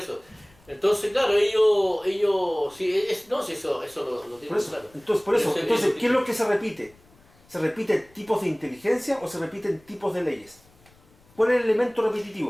Entonces, claro, ellos sí, sí, eso lo tienen Por eso, claro. entonces, ¿qué es lo que se repite? ¿Se repiten tipos de inteligencia o se repiten tipos de leyes? ¿Cuál es el elemento repetitivo?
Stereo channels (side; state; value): left; noise; rumble, 30 dB below the sound